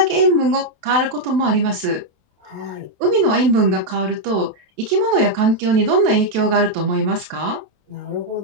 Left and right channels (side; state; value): left; late; 28 ms